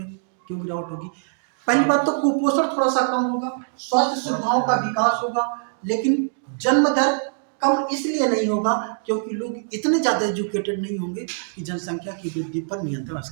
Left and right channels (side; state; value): left; silent; digital silence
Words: क्यों गिरावट होगी? पहली बात तो कुपोषण थोड़ा सा कम होगा, स्वास्थ्य सुविधाओं का विकास होगा, लेकिन जन्म दर कम इसलिए नहीं होगा क्योंकि लोग इतने ज्यादा एजुकेटेड नहीं होंगे कि जनसंख्या की वृद्धि पर नियंत्रण